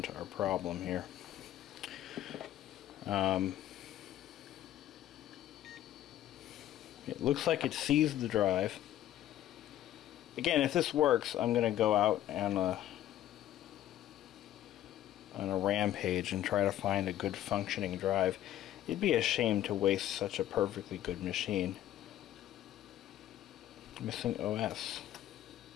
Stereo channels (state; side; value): quieter; right; 12.6 dB